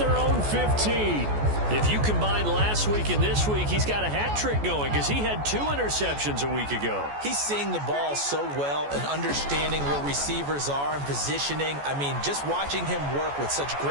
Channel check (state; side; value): late; left; 14 ms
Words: own 15. If you combine last week and this week, he's got a hat trick going because he had 2 interceptions a week ago. He's seeing the ball so well and understanding where receivers are and positioning. I mean, just watching him work with such